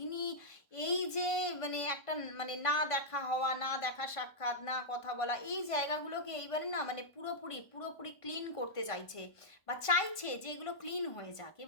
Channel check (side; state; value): right; late; 1.5 ms